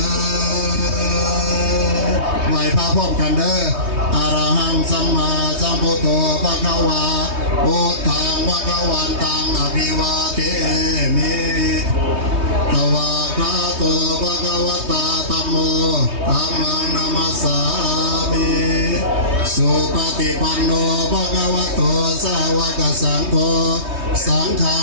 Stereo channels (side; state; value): left; late; 3.2 ms